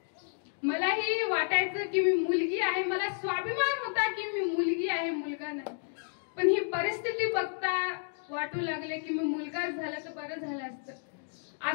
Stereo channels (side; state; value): right; silent; digital silence